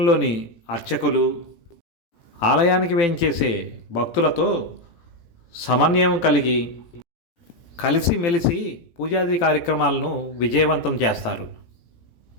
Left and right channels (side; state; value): right; late; 18 ms